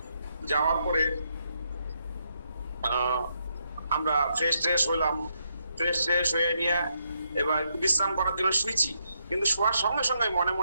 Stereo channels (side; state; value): both; inverted; correlation -0.79